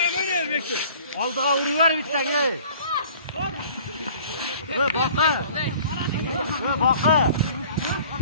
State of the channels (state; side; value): inverted; both; correlation -0.50